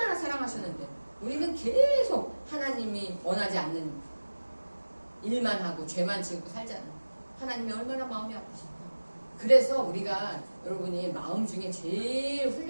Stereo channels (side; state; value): both; inverted; correlation -1.00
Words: 사랑하셨는데 우리는 계속 하나님이 원하지 않는 일만 하고 죄만 지고 살잖아요. 하나님이 얼마나 마음이 아프실까. 그래서 우리가 여러분이 마음 중에 제일